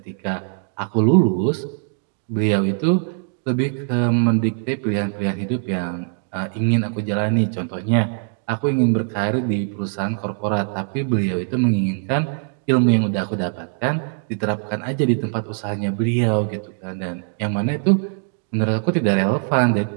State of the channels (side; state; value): left; silent; 65 dB below the other